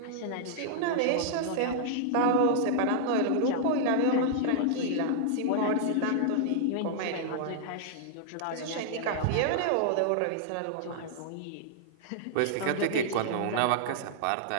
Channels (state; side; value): different; both; correlation -0.01